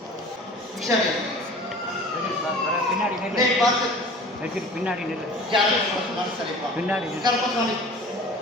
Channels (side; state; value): both; normal; correlation 0.42